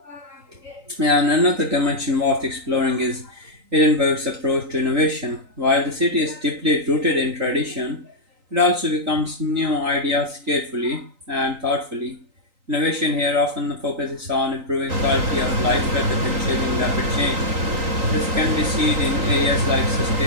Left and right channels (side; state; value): left; late; 3.9 ms